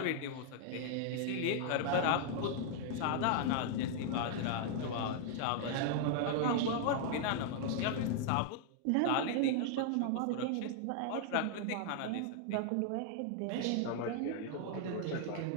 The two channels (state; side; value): different; both; correlation -0.01